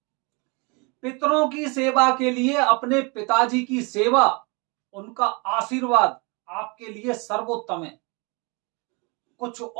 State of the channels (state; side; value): quieter; left; 29.9 dB